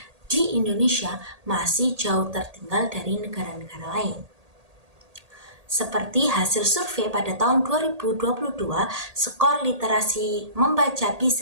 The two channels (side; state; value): left; late; 1.8 ms